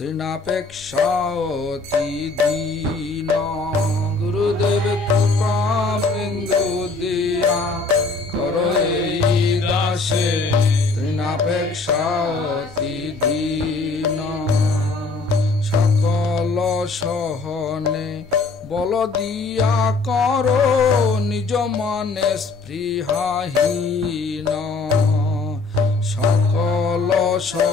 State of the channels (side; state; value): right; quieter; 3.9 dB